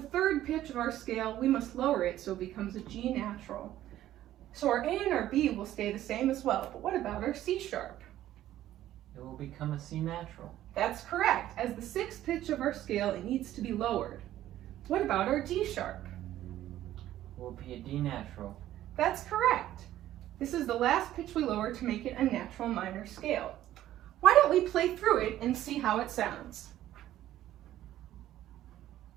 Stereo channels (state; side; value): quieter; left; 13.2 dB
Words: 3rd pitch of our scale, we must lower it so it becomes a G natural. So our A and our B will stay the same as well. But what about our C sharp? It will become a C natural. That's correct. As the 6th pitch of our scale, it needs to be lowered. What about our D sharp? It will be a D natural. That's correct. This is the last pitch we lower to make it a natural minor scale. Why don't we play through it and see how it sounds?